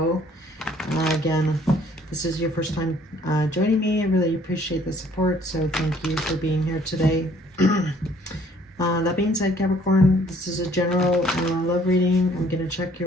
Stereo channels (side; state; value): both; normal; correlation 0.60